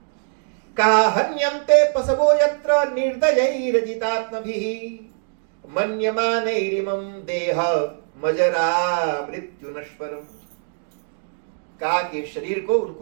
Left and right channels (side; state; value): left; silent; digital silence